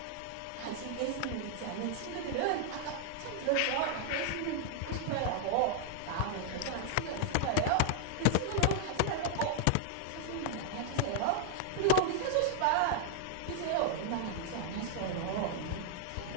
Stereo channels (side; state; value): both; different; correlation 0.00